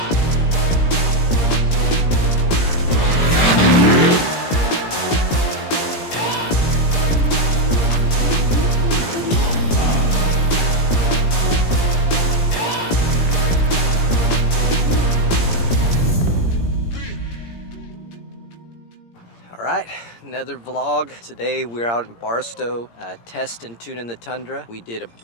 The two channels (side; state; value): right; late; 17 ms